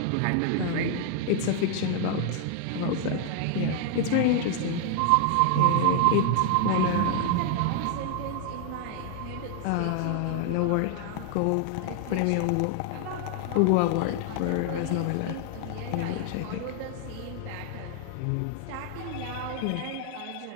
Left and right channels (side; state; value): both; different; correlation 0.00